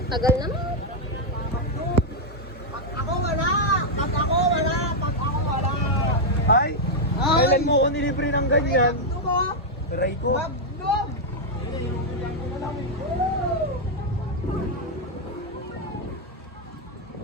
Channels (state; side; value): normal; both; correlation -0.02